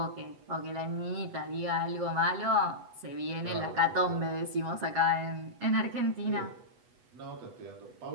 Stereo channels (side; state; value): left; late; 8.1 ms